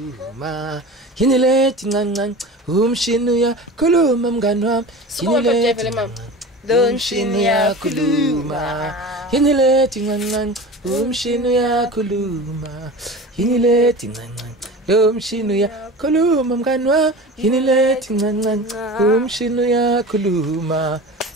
yini lethi ncancan umshini uyakhuluma mngani wami yini lethi lo mshini uyakhuluma yini lethi ncancan umshini uyakhuluma yini lethi ncancan lo mshini uyakhuluma mngani wami yini lethi ncancan umshini uyakhuluma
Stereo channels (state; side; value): normal; both; correlation 0.34